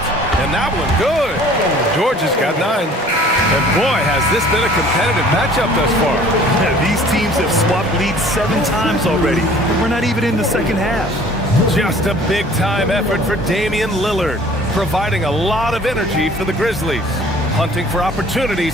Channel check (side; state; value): both; normal; correlation 0.51